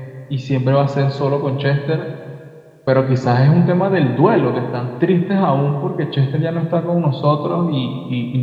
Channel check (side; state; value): both; identical; correlation 1.00